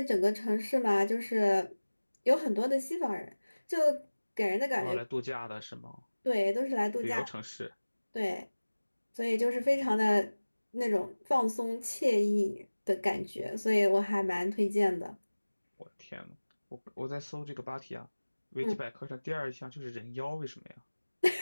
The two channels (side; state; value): both; inverted; correlation -1.00